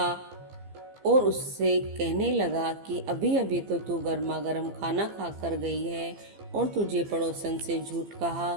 और उससे कहने लगा कि अभी अभी तो तू गर्मा गर्म खाना खा कर गई है और तुझे पड़ोसन से झूठ कहा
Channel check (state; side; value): late; left; 15 ms